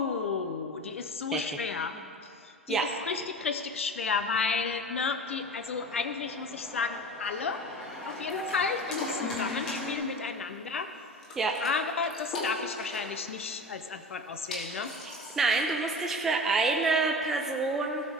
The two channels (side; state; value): both; normal; correlation 0.33